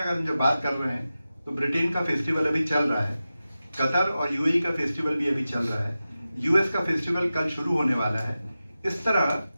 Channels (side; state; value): both; inverted; correlation -0.94